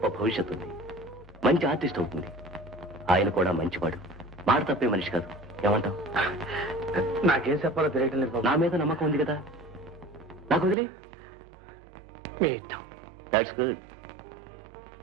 భవిష్యత్తు ఉంది, మంచి ఆర్టిస్ట్ అవుతుంది. ఆయన కూడా మంచివాడు, మాట తప్పే మనిషి కాదు. ఏమంటావు? నాకేం చెప్పాలో తెలియటం లేదు బాబు. నా మీద నమ్మకం ఉంది కదా, నాకు వదిలే. మీ ఇష్టం. That's good.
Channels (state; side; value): drops out; left; at 10.8 s